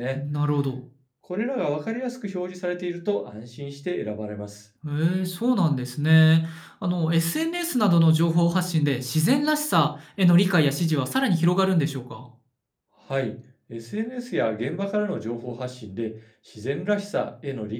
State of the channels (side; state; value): both; identical; correlation 1.00